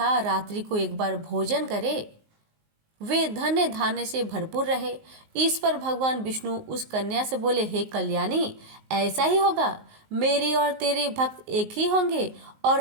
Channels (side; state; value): left; late; 19 ms